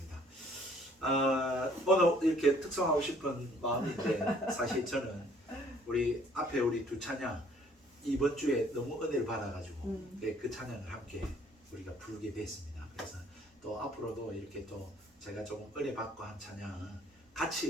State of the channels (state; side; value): normal; both; correlation 0.60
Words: 오늘 이렇게 특성하고 싶은 마음인데 사실 저는 우리 앞에 우리 두 찬양 이번 주에 너무 은혜를 받아가지고 그 찬양을 함께 우리가 부르게 됐습니다. 그래서 또 앞으로도 이렇게 또 제가 조금 은혜 받고 한 찬양